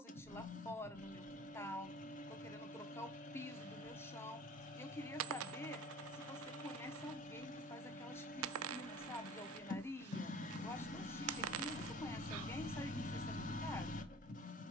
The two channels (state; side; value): normal; both; correlation 0.43